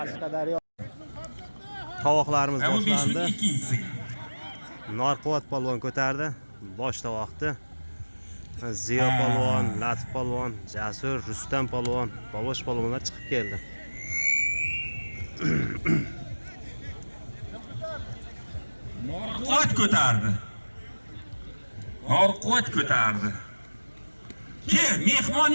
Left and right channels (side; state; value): both; inverted; correlation -1.00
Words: Tovoqlarimiz boshlandi. Narquvvat polvon ko'tardi. Bosh tovoqni. Ziyo polvon, Latif polvon, Jasur, Rustam polvon, Bobosh polvonlar chiqib keldi. Narquvvat ko'tardi. Narquvvat ko'tardi. Ke, mehmon